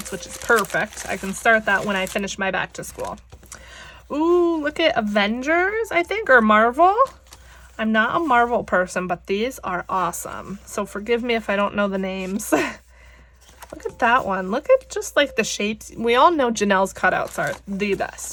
which is perfect. I can start that when I finish my back to school. Ooh, look at Avengers, I think, or Marvel. I'm not a Marvel person, but these are awesome. So forgive me if I don't know the names. Look at that one. Look at just like the shapes. We all know Janelle's cutouts are the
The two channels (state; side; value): identical; both; correlation 1.00